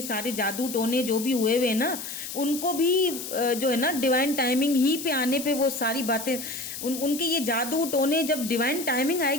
सारे जादू टोने जो भी हुए हुए ना, उनको भी जो है ना डिवाइन टाइमिंग ही पे आने पे वो सारी बातें उनके ये जादू टोने, जब डिवाइन टाइमिंग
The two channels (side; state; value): left; noise; hiss, 8 dB below the sound